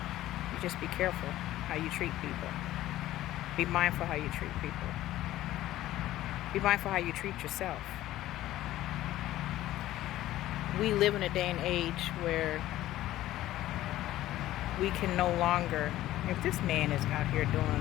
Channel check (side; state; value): right; quieter; 14.7 dB